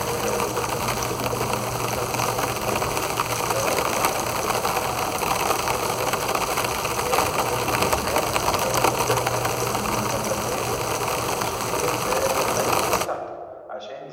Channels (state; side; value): identical; both; correlation 1.00